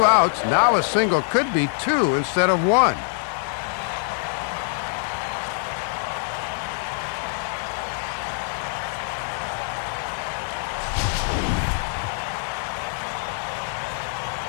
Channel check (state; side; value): silent; right; 60 dB below the other